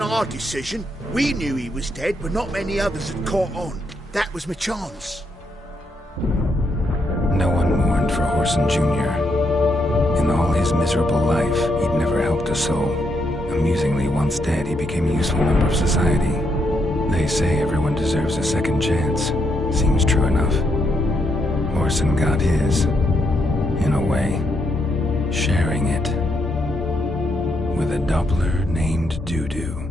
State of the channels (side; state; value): both; normal; correlation 0.78